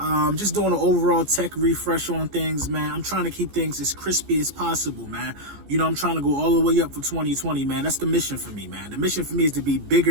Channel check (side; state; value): left; late; 14 ms